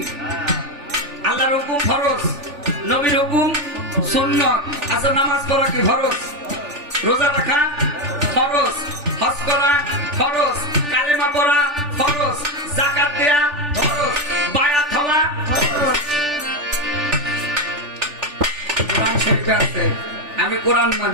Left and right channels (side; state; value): left; late; 3.4 ms